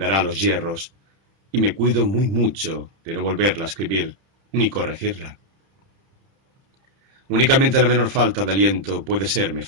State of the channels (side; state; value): left; late; 31 ms